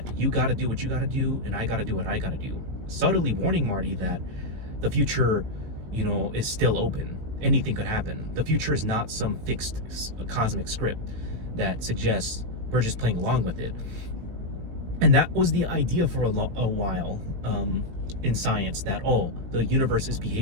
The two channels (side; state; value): left; late; 18 ms